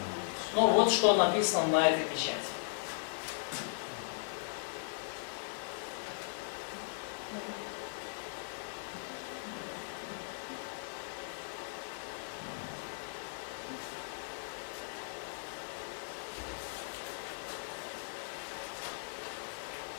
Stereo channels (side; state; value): right; silent; digital silence